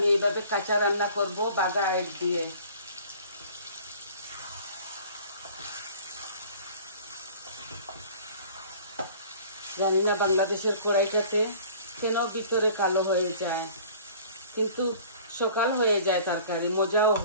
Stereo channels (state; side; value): inverted; both; correlation -0.48